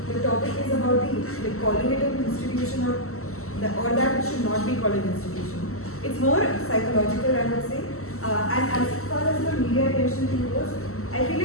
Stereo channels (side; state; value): right; late; 0.63 ms